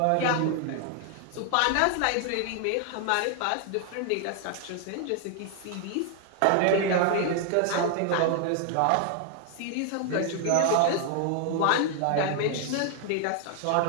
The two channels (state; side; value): different; both; correlation 0.00